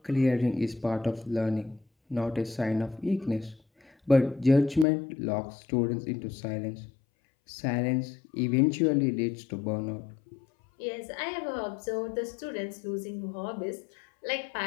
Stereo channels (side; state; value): right; drops out; at 4.9 s